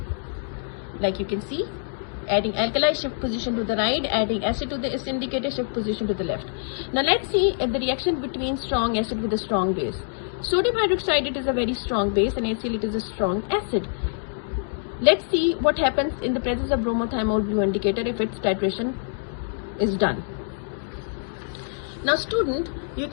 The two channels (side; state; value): right; silent; digital silence